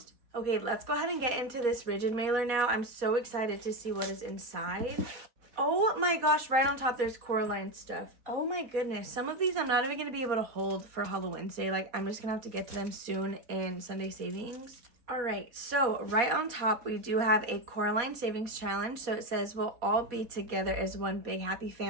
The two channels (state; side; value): late; left; 4.2 ms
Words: Okay, let's go ahead and get into this rigid mailer now. I'm so excited to see what is inside. Oh my gosh, right on top there's Coraline stuff. Oh my goodness. Some of these I'm not even going to be able to hold for Halloween Wednesday. Like, I'm just going to have to get to them soon in Sunday Savings. All right, so right on top, we do have a Coraline Savings Challenge. So it says we'll all be together as one big happy